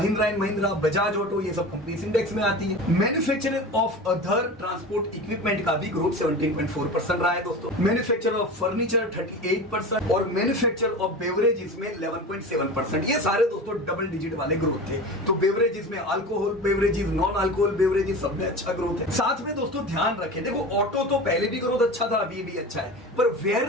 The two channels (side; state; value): both; normal; correlation 0.31